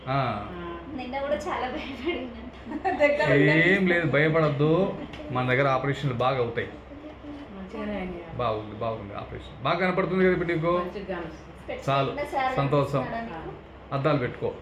ఏం లేదు, భయపడద్దు. మన దగ్గర ఆపరేషన్లు బాగా అవుతాయి. బాగుంది బాగుంది, ఆపరేషన్ బాగా కనపడుతుంది కదా ఇప్పుడు నీకు. చాలు, సంతోషం. అద్దాలు పెట్టుకో,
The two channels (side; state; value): both; identical; correlation 1.00